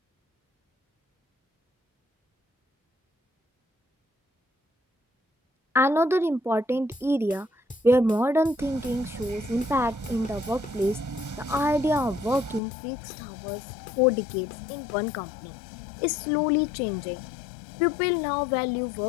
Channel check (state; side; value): drops out; right; at 12.6 s